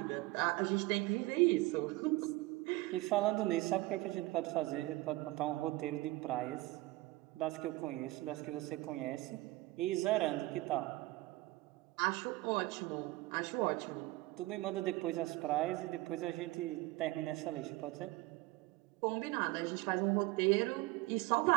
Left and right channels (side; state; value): left; quieter; 20.1 dB